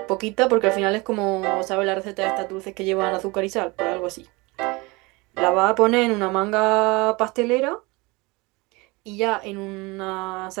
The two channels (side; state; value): left; quieter; 25.0 dB